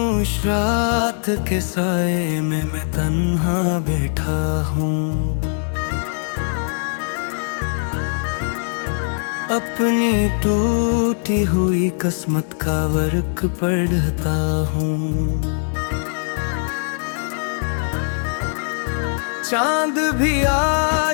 रात के साए में मैं तन्हा बैठा हूँ। अपनी टूटी हुई किस्मत का वर्क पढ़ता हूँ। चांद भी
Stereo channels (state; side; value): silent; right; 60 dB below the other